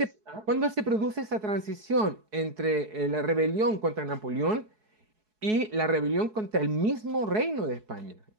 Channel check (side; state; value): left; late; 4.7 ms